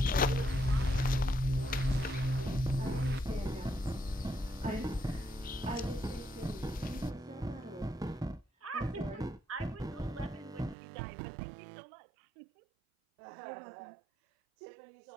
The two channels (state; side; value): drops out; left; at 10.8 s